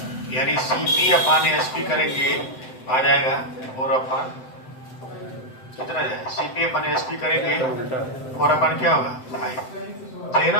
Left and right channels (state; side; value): late; right; 7.8 ms